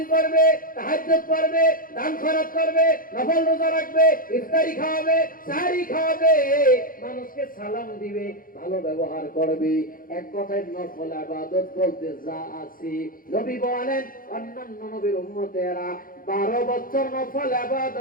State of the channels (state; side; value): late; right; 0.41 ms